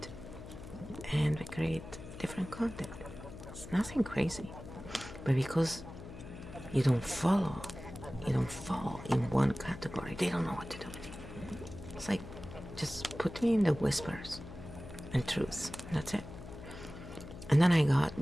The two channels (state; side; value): noise; left; hum, 13 dB below the sound